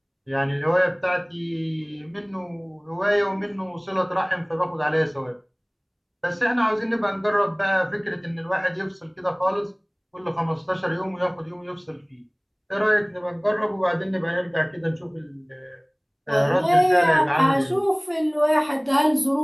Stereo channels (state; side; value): identical; both; correlation 1.00